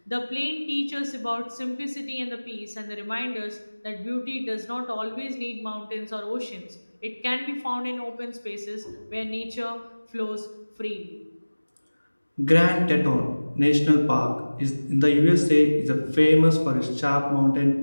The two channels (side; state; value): both; inverted; correlation -1.00